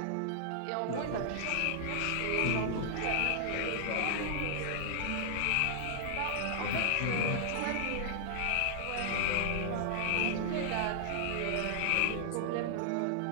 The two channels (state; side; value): different; both; correlation 0.00